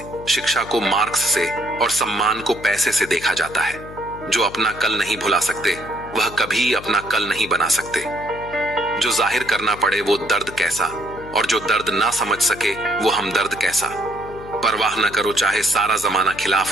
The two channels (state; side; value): noise; left; hum, 15 dB below the sound